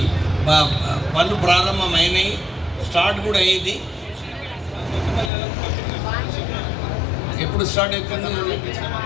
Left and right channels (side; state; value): right; drops out; at 5.3 s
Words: పనులు ప్రారంభమైనాయి, స్టార్ట్ కూడా అయ్యింది. ఎప్పుడు స్టార్ట్ అవుతుంది